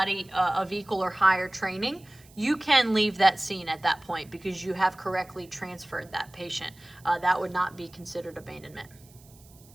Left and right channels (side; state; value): right; noise; hiss, 26 dB below the sound